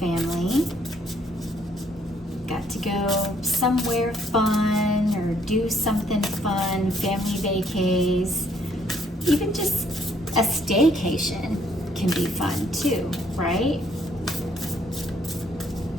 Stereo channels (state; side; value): normal; both; correlation 0.67